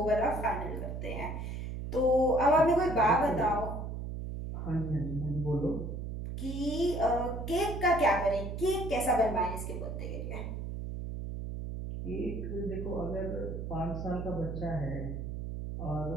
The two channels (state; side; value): noise; right; hum, 6 dB below the sound